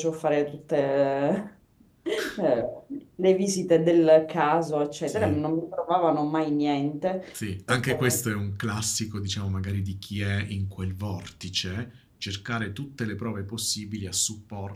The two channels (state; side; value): identical; both; correlation 1.00